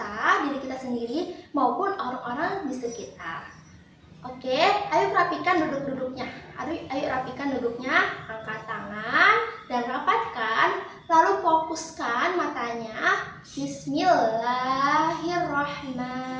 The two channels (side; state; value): both; identical; correlation 1.00